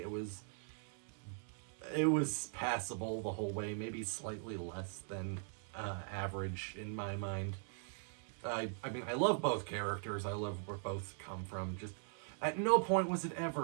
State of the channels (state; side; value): silent; left; 51 dB below the other